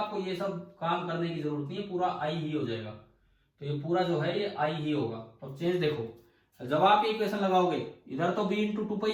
ये सब काम करने की जरूरत नहीं है, पूरा आई ही हो जाएगा। तो ये पूरा जो है ये आई ही होगा। तो चेंज देखो, जब आप ये इक्वेशन लगाओगे, इधर तो B into two pi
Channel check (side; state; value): both; identical; correlation 1.00